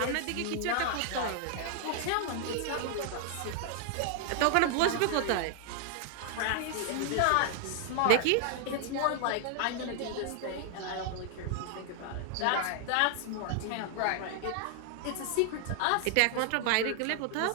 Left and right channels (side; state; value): both; different; correlation 0.00